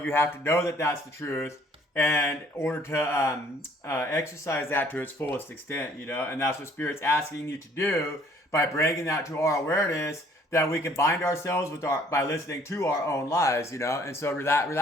have to know that that's the truth, and in order to exercise that to its fullest extent, you know. And that's what Spirit's asking you to do by bringing that to our awareness, that we can bind ourselves with by listening to our own lies, you know. And so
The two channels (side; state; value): both; normal; correlation 0.59